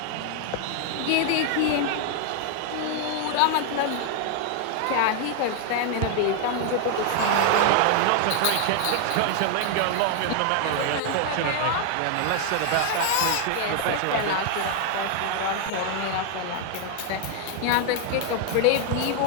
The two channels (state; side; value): different; both; correlation 0.00